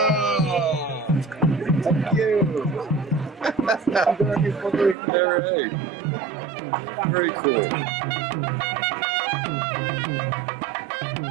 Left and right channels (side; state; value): left; drops out; at 5.0 s